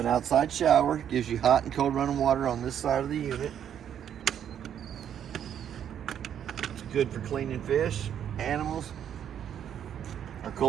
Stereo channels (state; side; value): quieter; left; 9.4 dB